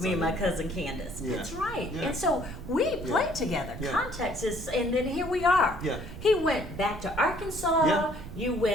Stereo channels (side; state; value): right; noise; rumble, 12 dB below the sound